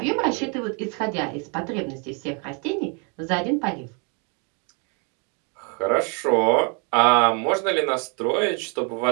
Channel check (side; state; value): left; quieter; 35.6 dB